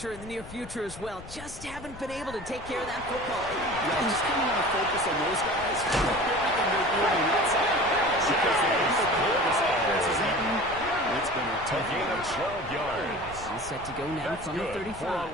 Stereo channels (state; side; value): noise; left; rumble, 16 dB below the sound